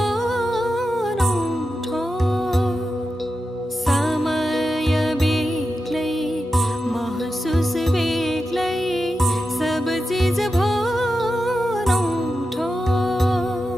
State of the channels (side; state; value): both; normal; correlation 0.90